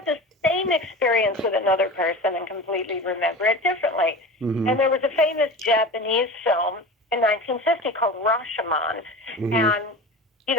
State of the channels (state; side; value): normal; both; correlation 0.32